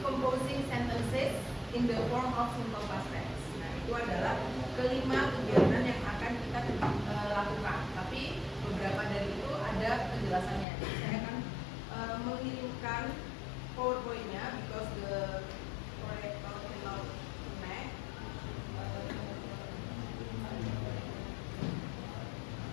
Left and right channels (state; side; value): drops out; right; at 10.7 s